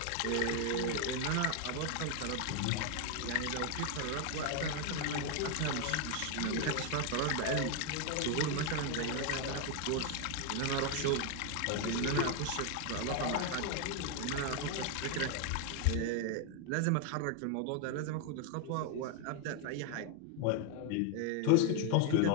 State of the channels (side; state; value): both; different; correlation 0.01